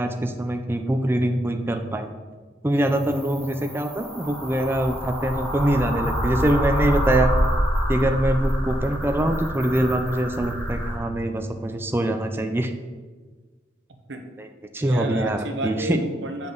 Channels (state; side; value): normal; both; correlation 0.80